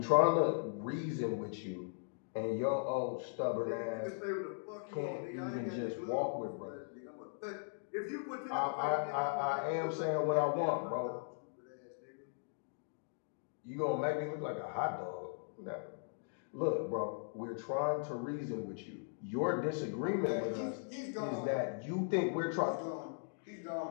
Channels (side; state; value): right; silent; digital silence